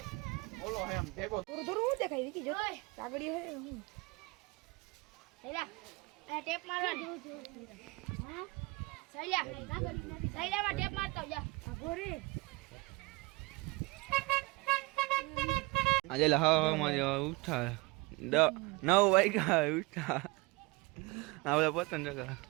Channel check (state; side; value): quieter; left; 24.9 dB